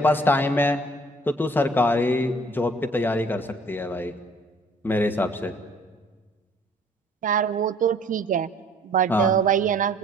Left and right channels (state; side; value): normal; both; correlation 0.55